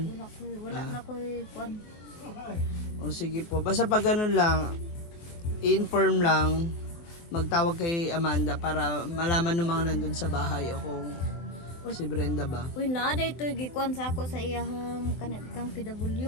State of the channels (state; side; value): late; right; 23 ms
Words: Wala na ko kuan. O sige po, basta pag ganun lang, inform lang, magtawag kay Amanda para malaman ng mga nandun sa bahay o kung si Brenda ba. Uy, na day to gikuan sa ako sa iyahang kanang